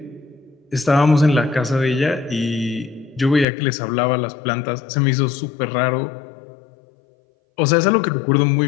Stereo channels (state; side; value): drops out; right; at 3.5 s